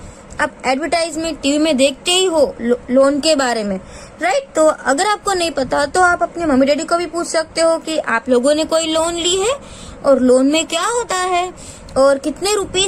आप एडवर्टाइजमेंट टीवी में देखते ही हो लोन के बारे में, राइट। तो अगर आपको नहीं पता तो आप अपने मम्मी डैडी को भी पूछ सकते हो कि आप लोगों ने कोई लोन ली है और लोन में क्या होता है और कितने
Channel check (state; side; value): identical; both; correlation 1.00